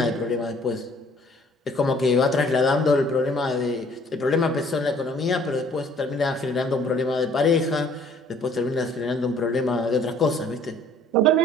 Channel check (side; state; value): both; normal; correlation 0.57